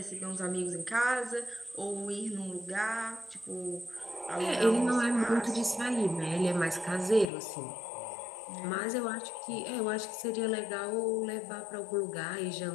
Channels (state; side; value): drops out; right; at 7.3 s